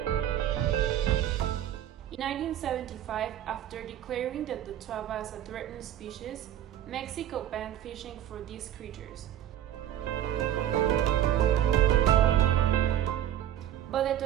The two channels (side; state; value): left; quieter; 11.3 dB